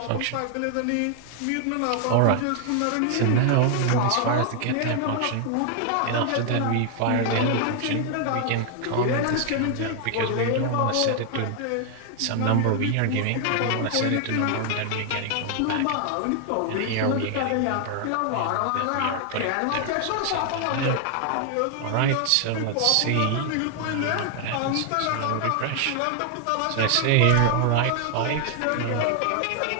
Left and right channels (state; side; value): different; both; correlation 0.00